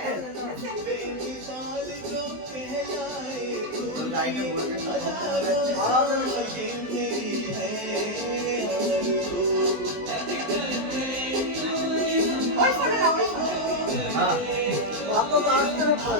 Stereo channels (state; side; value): late; left; 20 ms